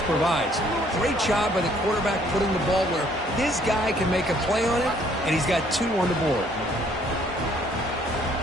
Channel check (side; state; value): both; normal; correlation 0.63